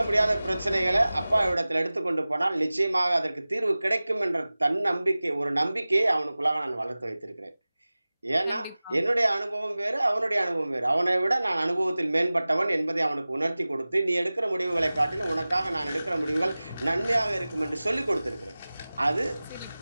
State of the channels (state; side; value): inverted; both; correlation -0.98